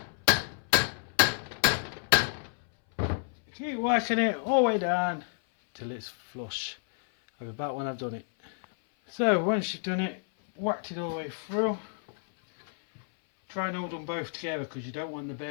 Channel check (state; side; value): silent; right; 58 dB below the other